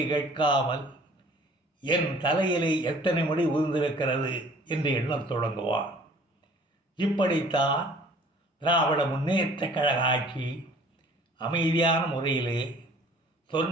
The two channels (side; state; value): both; normal; correlation 0.53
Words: கேட்காமல் என் தலையிலே எத்தனை முடி உதிர்ந்திருக்கிறது என்று எண்ணத் தொடங்குவான். இப்படித்தான் திராவிட முன்னேற்றக் கழக ஆட்சி அமைதியான முறையிலே